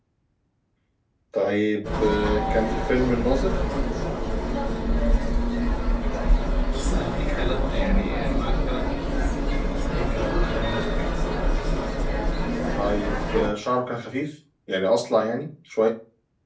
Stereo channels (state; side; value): identical; both; correlation 1.00